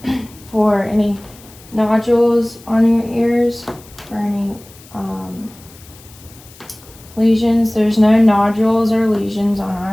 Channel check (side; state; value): left; noise; hiss, 23 dB below the sound